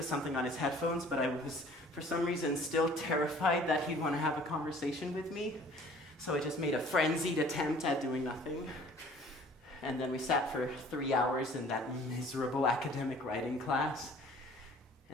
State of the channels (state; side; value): normal; both; correlation 0.52